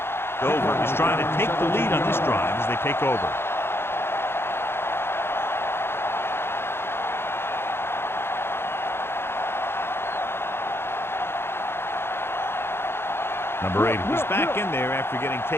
Dover is trying to take the lead on this drive as they take over. Number 8, he's back in there after getting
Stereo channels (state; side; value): late; right; 0.11 ms